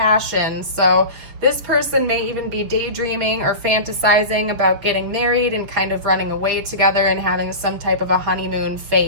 So this person may even be daydreaming or fantasizing about getting married and kind of running away together and having some type of a honeymoon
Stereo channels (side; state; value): left; late; 6.6 ms